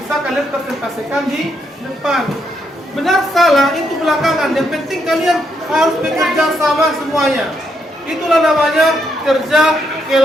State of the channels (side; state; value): both; normal; correlation 0.77